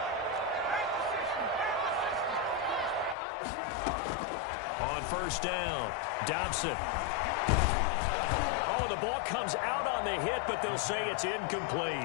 First down, Dobson. Oh, the ball comes out on the hit, but they'll say it's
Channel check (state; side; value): drops out; right; at 3.2 s